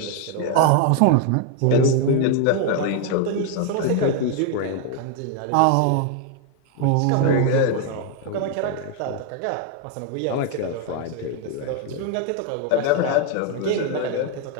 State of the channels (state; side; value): different; both; correlation 0.01